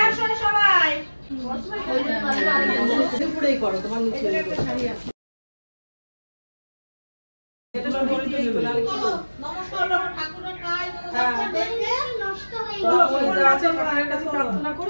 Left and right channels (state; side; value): inverted; both; correlation -1.00